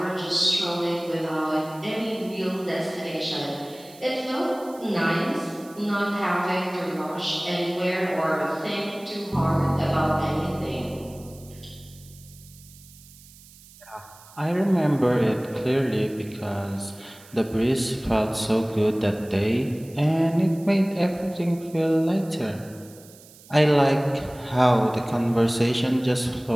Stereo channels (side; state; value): right; noise; hiss, 23 dB below the sound